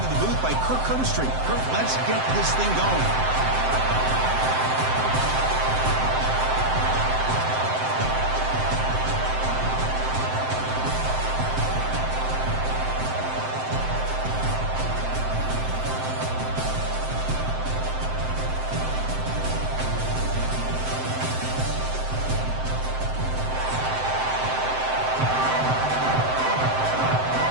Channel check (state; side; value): late; left; 7.7 ms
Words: the booth by Kirk Herbstreit. Kirk, let's get this thing going.